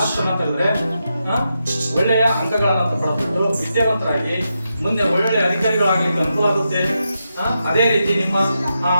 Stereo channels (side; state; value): both; inverted; correlation -0.86